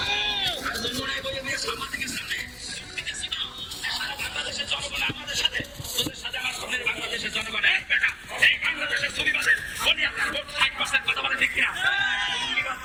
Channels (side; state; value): both; identical; correlation 1.00